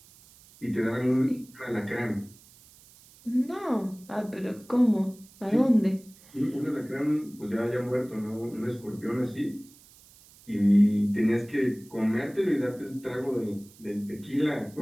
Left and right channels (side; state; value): right; noise; hiss, 25 dB below the sound